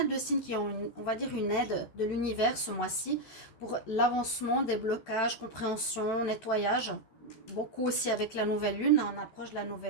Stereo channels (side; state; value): right; late; 13 ms